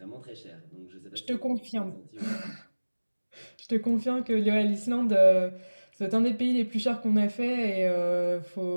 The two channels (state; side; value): inverted; both; correlation -1.00